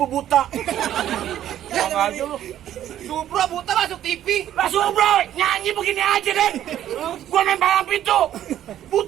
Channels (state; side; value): quieter; left; 11.6 dB